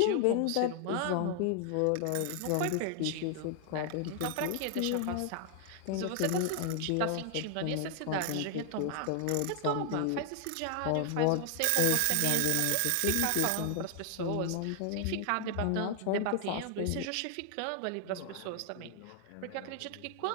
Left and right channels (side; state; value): both; different; correlation 0.00